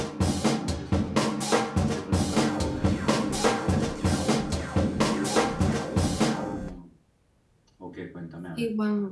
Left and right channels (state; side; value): identical; both; correlation 1.00